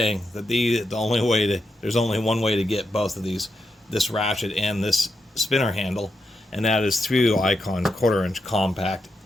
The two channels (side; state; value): both; normal; correlation 0.85